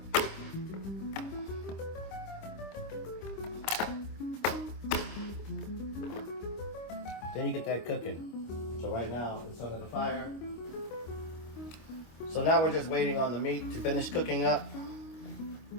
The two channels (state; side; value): late; right; 26 ms